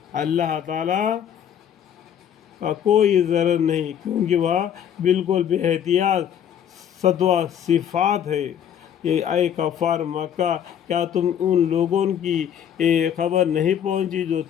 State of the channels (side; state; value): right; quieter; 9.2 dB